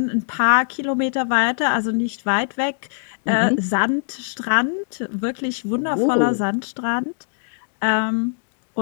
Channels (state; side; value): silent; right; 64 dB below the other